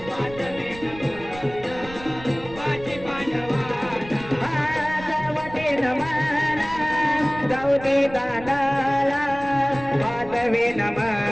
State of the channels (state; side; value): noise; right; rumble, 16 dB below the sound